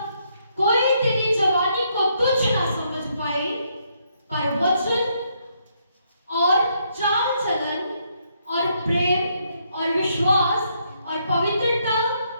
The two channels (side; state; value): both; inverted; correlation -0.74